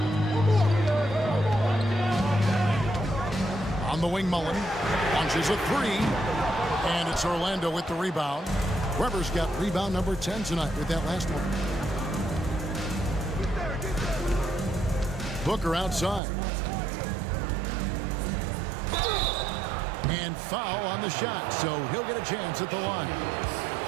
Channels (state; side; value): drops out; left; at 16.2 s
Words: On the wing, Mullen launches a 3. And it's Orlando with the rebound. Weber's got rebound number 10 tonight with that last one. Booker outside. And foul on the shot, so he'll get a chance at the line.